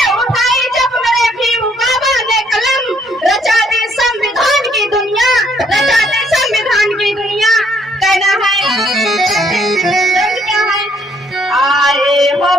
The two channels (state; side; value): normal; both; correlation 0.67